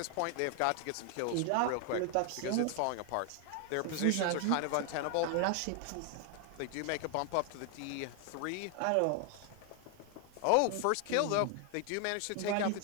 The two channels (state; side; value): different; both; correlation 0.00